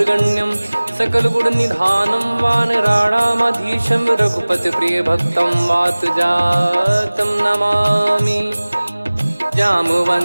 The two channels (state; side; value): inverted; both; correlation -1.00